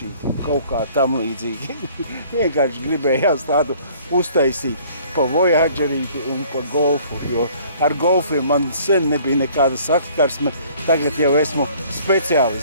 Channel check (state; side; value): inverted; both; correlation -0.55